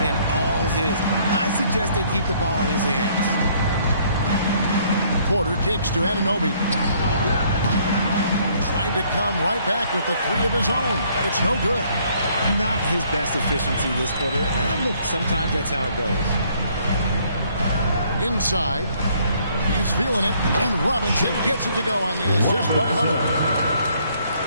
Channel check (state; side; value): inverted; both; correlation -0.64